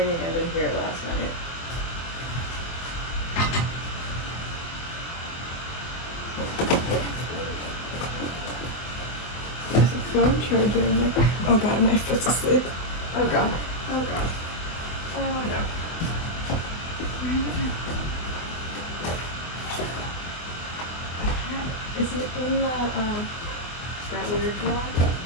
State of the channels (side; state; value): right; late; 24 ms